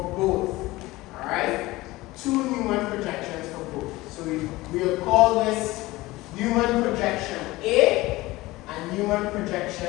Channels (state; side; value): quieter; right; 19.5 dB